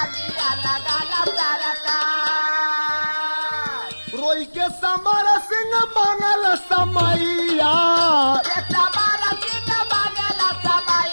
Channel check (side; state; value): both; inverted; correlation -1.00